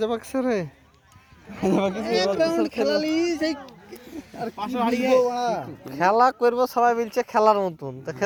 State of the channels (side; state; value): both; identical; correlation 1.00